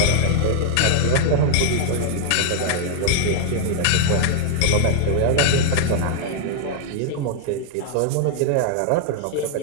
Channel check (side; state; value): both; different; correlation -0.01